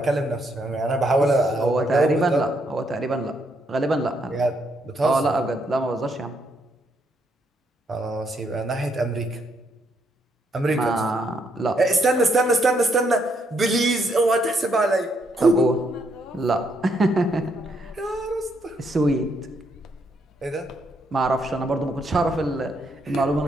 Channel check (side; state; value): both; normal; correlation 0.74